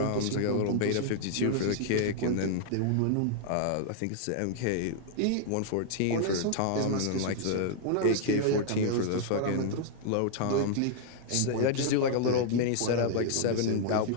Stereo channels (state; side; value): different; both; correlation -0.01